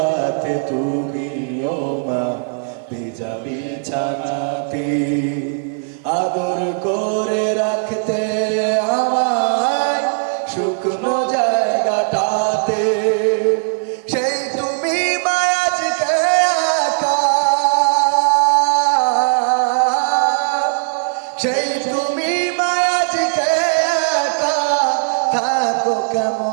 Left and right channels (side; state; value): left; silent; 55 dB below the other